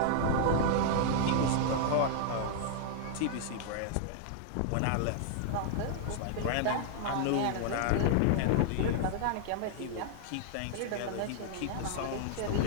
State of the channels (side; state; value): both; different; correlation 0.00